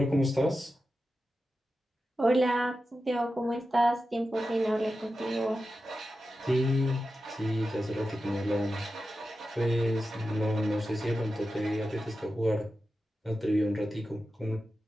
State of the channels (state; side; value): normal; both; correlation 0.92